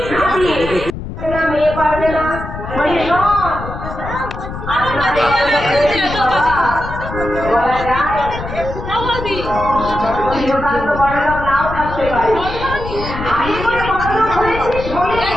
দিয়ে মেয়ে পারবে না। নাও থাকতে পারে,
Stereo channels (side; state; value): left; noise; rumble, 8 dB below the sound